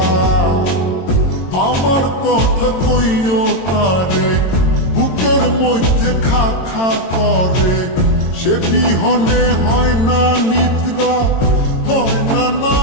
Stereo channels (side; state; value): right; late; 22 ms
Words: আমার কথা কইও তারে, বুকের মধ্যে খা খা করে, সে বিহনে হয় না নিদ্রা, হয় না